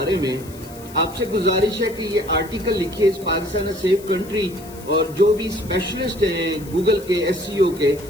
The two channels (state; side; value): noise; left; hiss, 20 dB below the sound